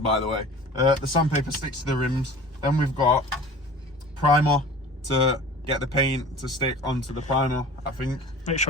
the way. The sandpaper sticks to the rims. Then we've got primer to get the paint to stick onto the primer, I think. Make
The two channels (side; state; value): both; normal; correlation 0.42